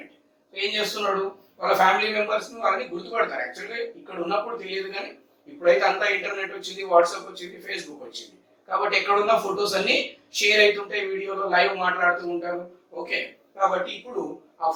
So ఏం చేస్తున్నాడు? వాళ్ళ ఫ్యామిలీ మెంబర్స్ ని వాళ్ళని గుర్తుపడతారు. యాక్చువల్గా ఇక్కడ ఉన్నప్పుడు తెలియదు, కానీ ఇప్పుడైతే అంతా ఇంటర్నెట్ వచ్చింది, వాట్సాప్ వచ్చింది, ఫేస్బుక్ వచ్చింది, కాబట్టి ఎక్కడున్న ఫొటోస్ అన్ని షేర్ అవుతుంటాయి, వీడియోలో లైవ్ మాట్లాడుతూ ఉంటారు. ఓకే, కాబట్టి ఇప్పుడు ఆ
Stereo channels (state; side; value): identical; both; correlation 1.00